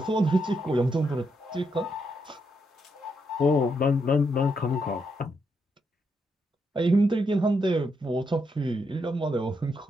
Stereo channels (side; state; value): both; normal; correlation 0.80